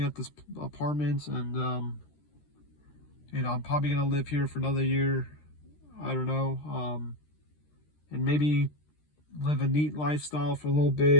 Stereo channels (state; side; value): late; right; 13 ms